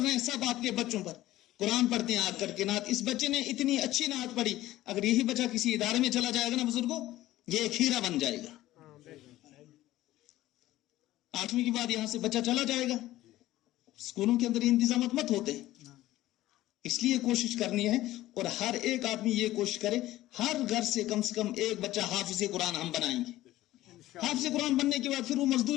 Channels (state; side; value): quieter; right; 15.6 dB